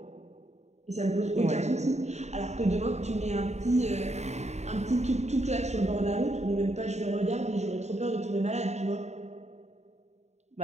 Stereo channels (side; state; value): left; late; 0.32 ms